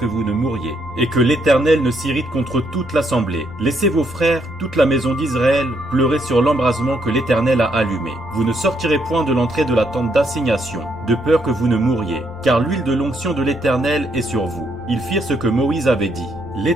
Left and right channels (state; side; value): noise; left; rumble, 18 dB below the sound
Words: vous ne mouriez, et que l'Éternel ne s'irrite contre toute l'assemblée. Laissez vos frères, toute la maison d'Israël, pleurer sur l'embrasement que l'Éternel a allumé. Vous ne sortirez point de l'entrée de la tente d'assignation, de peur que vous ne mouriez, car l'huile de l'onction de l'Éternel est sur vous. » Ils firent ce que Moïse avait dit.